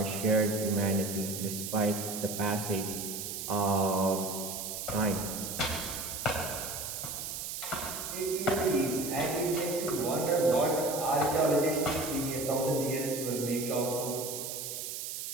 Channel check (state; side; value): noise; right; hiss, 6 dB below the sound